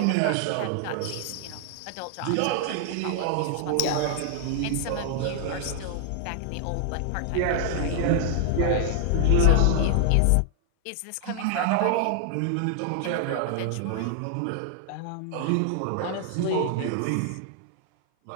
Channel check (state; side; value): different; both; correlation 0.00